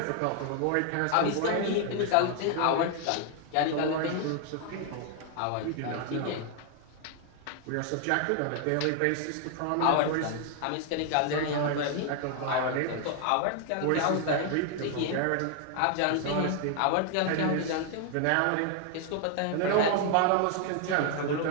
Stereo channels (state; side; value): different; both; correlation 0.00